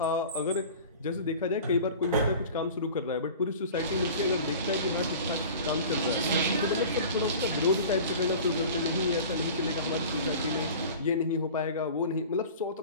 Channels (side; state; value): both; inverted; correlation -0.40